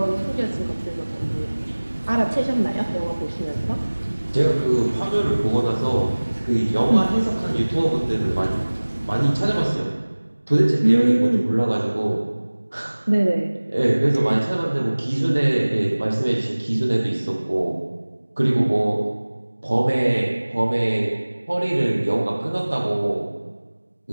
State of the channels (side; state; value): both; inverted; correlation -1.00